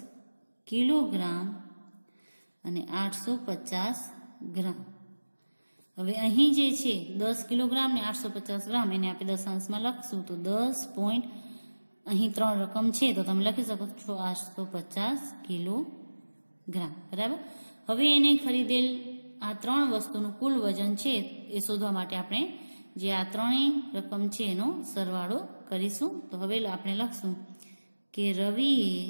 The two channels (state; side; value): inverted; both; correlation -1.00